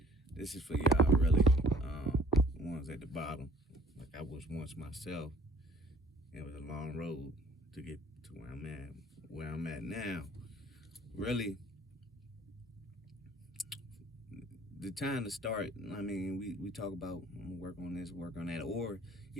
This is for y'all really, the ones at the bottom, like I was once myself. It was a long road to get to where I'm at now. Really, the time to start, I mean, we talk about work on this, work on that, or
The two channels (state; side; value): normal; both; correlation 0.55